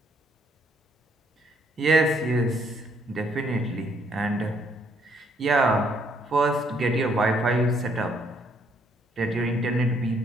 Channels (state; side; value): normal; both; correlation 0.69